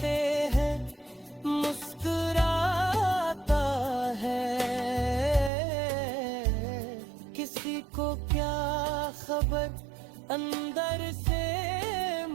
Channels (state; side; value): drops out; left; at 5.5 s